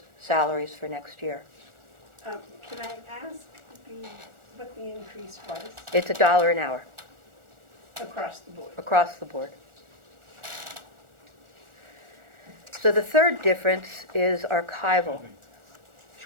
salaries for next year. Can I ask what the increase was It's $1 an hour across the board? across the board. So the third difference is archival.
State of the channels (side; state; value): left; late; 1.4 ms